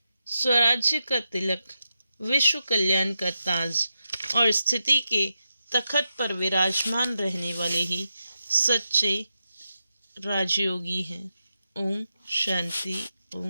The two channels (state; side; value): inverted; both; correlation -0.88